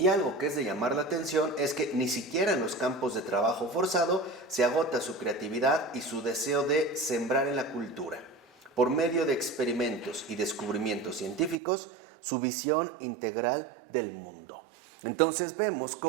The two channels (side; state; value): left; drops out; at 11.6 s